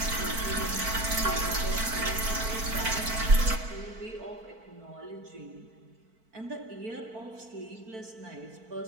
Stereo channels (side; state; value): left; late; 4.5 ms